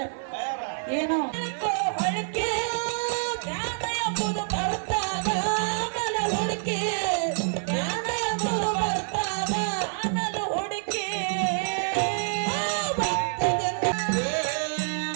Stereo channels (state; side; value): silent; left; digital silence